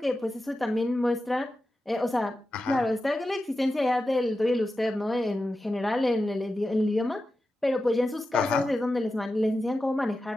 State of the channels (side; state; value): both; normal; correlation 0.92